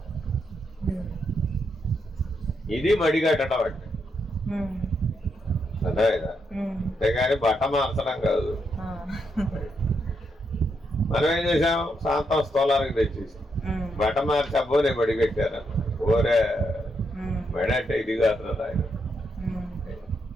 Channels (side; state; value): both; normal; correlation 0.80